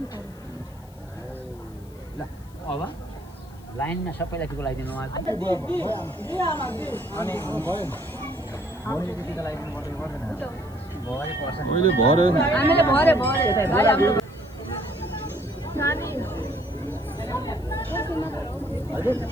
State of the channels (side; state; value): left; noise; hiss, 27 dB below the sound